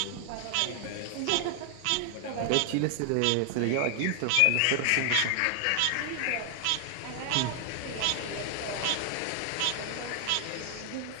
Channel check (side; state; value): both; different; correlation 0.00